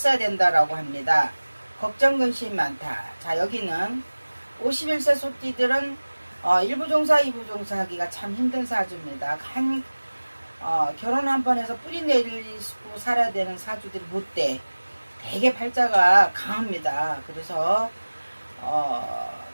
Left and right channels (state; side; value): inverted; both; correlation -1.00